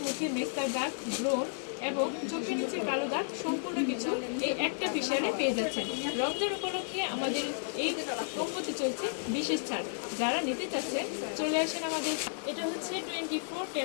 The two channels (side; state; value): right; silent; 56 dB below the other